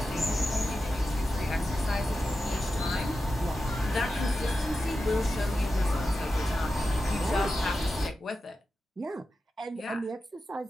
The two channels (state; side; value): normal; both; correlation 0.91